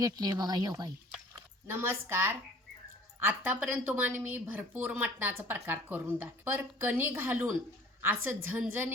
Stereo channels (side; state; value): both; normal; correlation 0.50